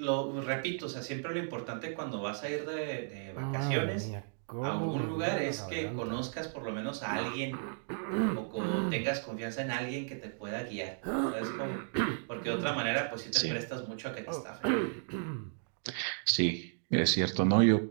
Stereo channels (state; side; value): silent; left; digital silence